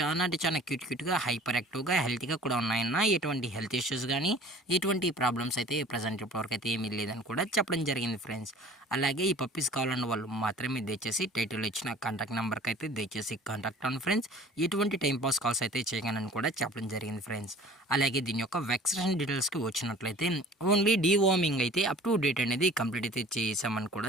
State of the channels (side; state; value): both; normal; correlation 0.47